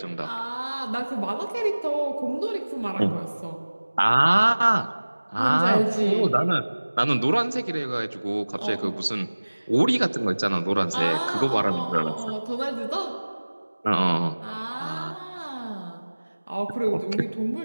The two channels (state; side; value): inverted; both; correlation -1.00